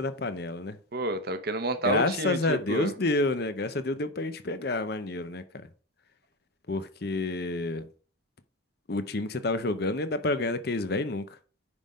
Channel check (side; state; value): both; normal; correlation 0.18